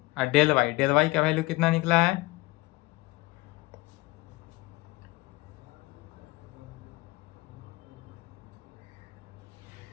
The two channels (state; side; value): quieter; right; 21.9 dB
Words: और डेल वाई का वैल्यू कितना निकला है,